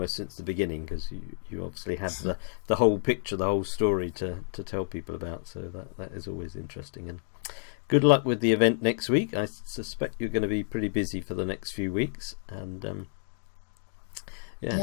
since the beginning, because you obviously have the whole picture, the whole story to tell people about. So that is always interesting. And good luck with the event next week. I suspect you're going to be pretty busy for the next few weeks, and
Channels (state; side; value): silent; right; digital silence